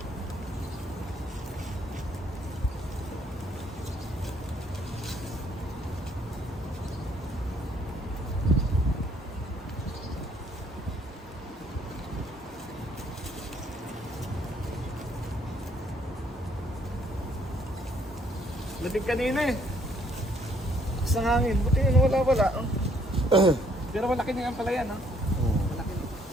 Lating kanina eh. lakas ng hangin. Buti yun, wala. Oh. Pero malaki na yan pala yan, ha? Malaki na.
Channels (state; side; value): normal; both; correlation 0.66